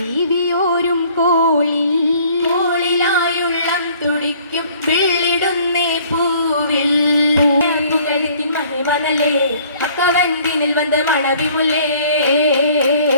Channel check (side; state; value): both; inverted; correlation -0.56